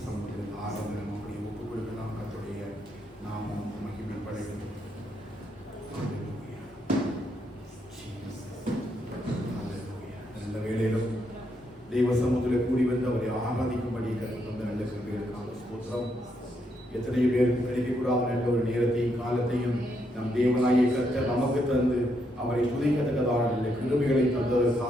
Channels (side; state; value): both; normal; correlation 0.77